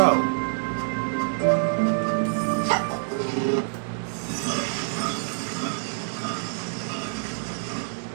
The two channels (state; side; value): silent; left; digital silence